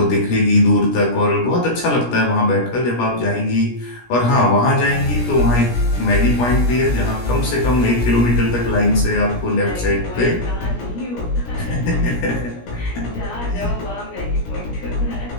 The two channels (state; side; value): late; right; 17 ms